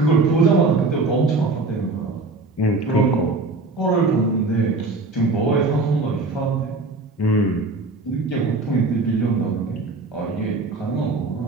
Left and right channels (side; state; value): left; quieter; 3.4 dB